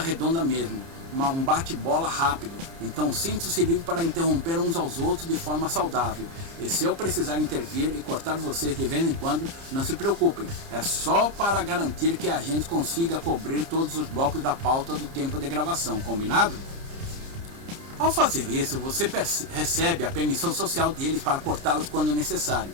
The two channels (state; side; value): late; left; 30 ms